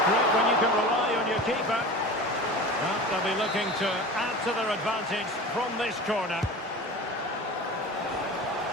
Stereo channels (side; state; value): both; normal; correlation 0.34